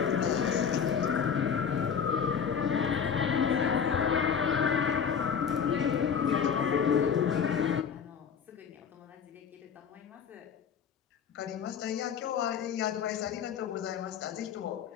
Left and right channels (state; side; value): quieter; right; 7.2 dB